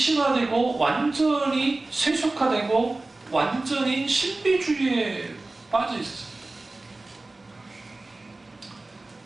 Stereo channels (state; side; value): quieter; left; 3.1 dB